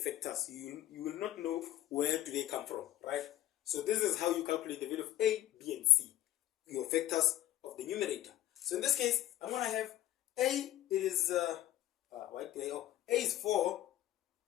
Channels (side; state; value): right; quieter; 13.8 dB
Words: You will not know where do they come from, right? So this is how you calculate the value of A, B, and C, your factors of the numerator. So in this case, I'm going to have A is, A is 4